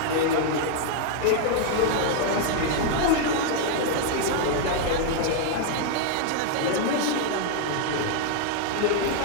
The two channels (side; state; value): both; different; correlation 0.00